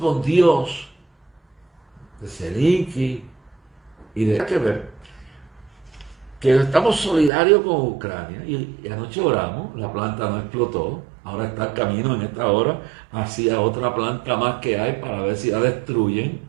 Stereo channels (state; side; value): drops out; left; at 7.3 s